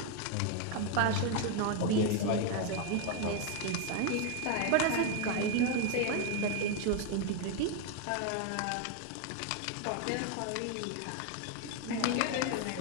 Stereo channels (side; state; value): both; different; correlation 0.01